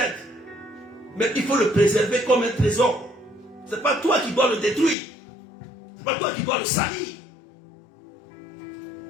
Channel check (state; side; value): drops out; right; at 5.0 s